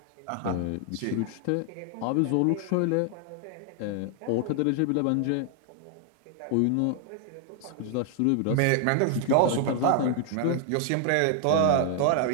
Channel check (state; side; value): different; both; correlation 0.00